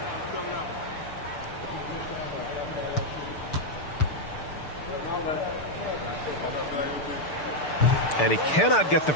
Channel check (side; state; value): right; late; 6.7 ms